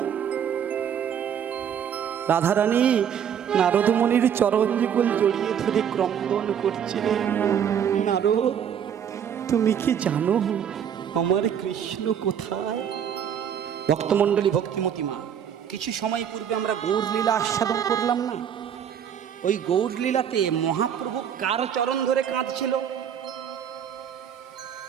রাধারানী নারদ মুনির চরণ যুগল জড়িয়ে ধরে ক্রন্দন করছে, নারদ তুমি কি জানো আমার কৃষ্ণ কোথায়? ভক্তমণ্ডলী, ভক্তিমতী মা, কিছু সময় পূর্বে আমরা গৌরলীলা আস্বাদন করলাম না? ওই গৌরলীলাতে মহাপ্রভু কার চরণ ধরে কাঁদছিল?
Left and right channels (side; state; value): left; quieter; 8.7 dB